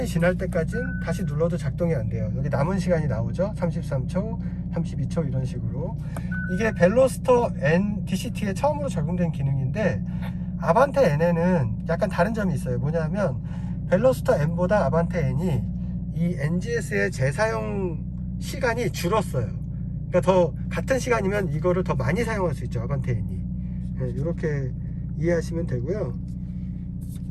지날 때까지는 다시 눌러도 작동이 안 돼요. 여기 남은 시간이 나오죠. 33초, 32초 이런 식으로. 이게 벨로스터 N DCT에 처음으로 적용된 기능인데, 아반떼 N에는 약간 다른 점이 있어요. 뭐냐면 벨로스터 N보다 아반떼 N이 이 NGS의 재사용 시간이 줄었어요. 그러니까 더 같은 시간이면 이거를 더 많이 사용할 수 있죠, 아반떼 N이. 네, 이렇게 이해하시면 되고요.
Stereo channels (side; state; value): both; identical; correlation 1.00